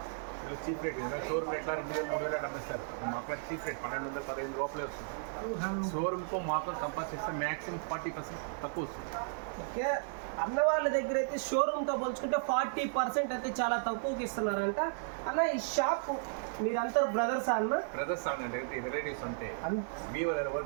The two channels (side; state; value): left; silent; 55 dB below the other